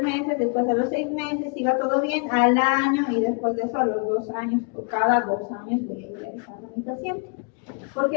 meses, después a los 6 meses, si va todo bien, al año y después de eso a los 2 años, por cada 2 años voy a ir realizando a mi paciente.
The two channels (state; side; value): quieter; right; 37.8 dB